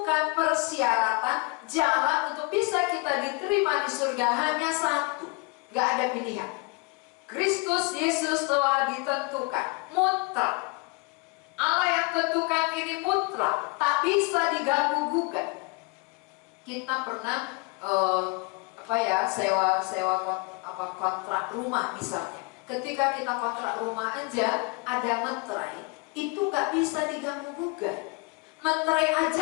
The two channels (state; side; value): quieter; right; 28.6 dB